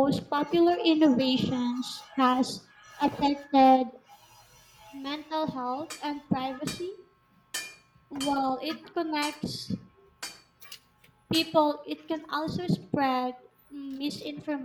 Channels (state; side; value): identical; both; correlation 1.00